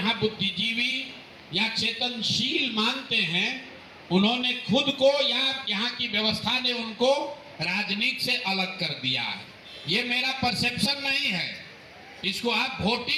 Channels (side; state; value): both; identical; correlation 1.00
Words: बुद्धिजीवी या चेतनशील मानते हैं, उन्होंने खुद को या यहाँ की व्यवस्था ने उनको राजनीति से अलग कर दिया है। ये मेरा परसेप्शन नहीं है, इसको आप